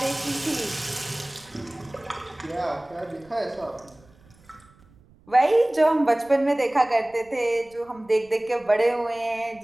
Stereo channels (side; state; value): right; noise; rumble, 28 dB below the sound